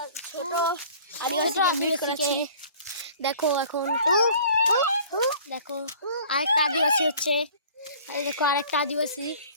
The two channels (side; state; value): both; inverted; correlation -0.49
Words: ছোট আদিবাসীকে। দেখো এখন দেখো আরেকটা আদিবাসী হচ্ছে। এই দেখো আরেকটা আদিবাসী